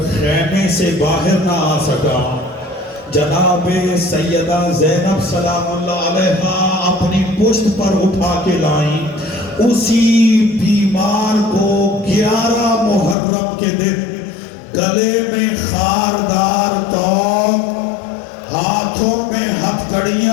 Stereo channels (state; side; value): drops out; right; at 13.2 s